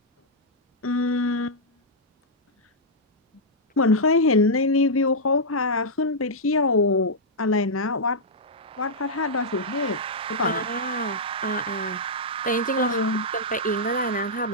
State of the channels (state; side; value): normal; both; correlation -0.08